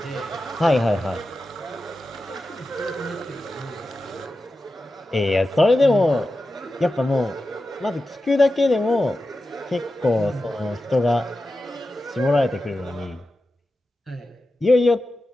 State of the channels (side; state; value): both; normal; correlation 0.92